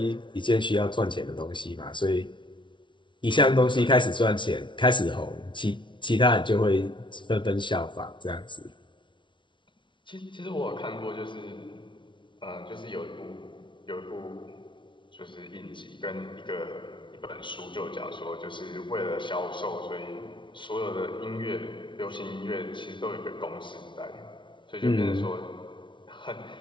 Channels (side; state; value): right; late; 0.24 ms